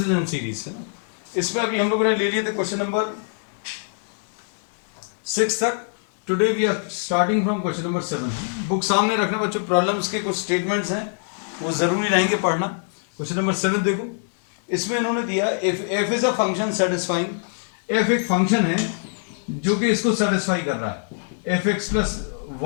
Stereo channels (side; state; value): right; silent; 63 dB below the other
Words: and series. है ना? इसमें अभी हम लोगों ने ले लिए थे क्वेश्चन नंबर 6 तक. Today we are starting from question number 7. Book सामने रखना बच्चों. प्रॉब्लम्स के कुछ स्टेटमेंट्स हैं, वो जरूरी रहेंगे पढ़ना. क्वेश्चन नंबर 7 देखो. इसमें इन्होंने दिया if F is a function satisfying. F एक फंक्शन है जो कि इसको सेटिस्फाई कर रहा है. F X plus